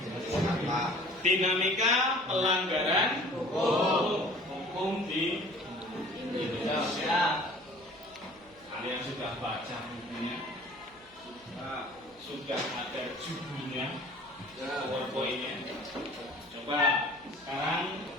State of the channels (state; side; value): noise; right; hum, 27 dB below the sound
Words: Dinamika pelanggaran hukum di Indonesia. Kalian sudah baca bukunya? Sudah ada judulnya, PowerPoint-nya. Coba sekarang